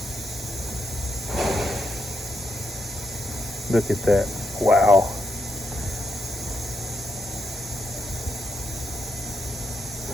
Look at that. Wow.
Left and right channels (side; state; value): both; normal; correlation 0.81